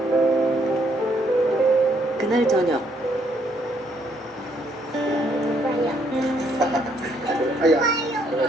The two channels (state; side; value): normal; both; correlation 0.70